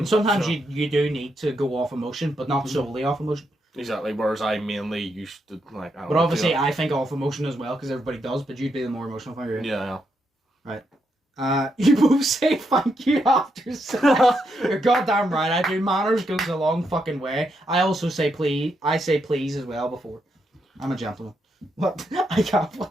sometimes you do need to go off emotion, but not solely off emotion. Exactly, whereas I mainly used to, like... But obviously I think off emotion as well, because everybody does, but you'd be the more emotional thinker. Yeah. Right. You both say thank you after sex. You're goddamn right, I do. Manners goes a long fucking way. I also say please. I say please as well before. I'm a gentleman. What? I can't.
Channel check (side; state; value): both; normal; correlation 0.80